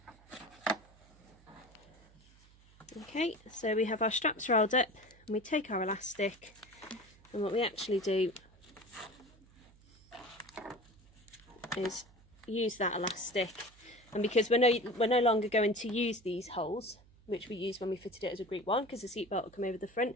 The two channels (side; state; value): right; noise; hum, 26 dB below the sound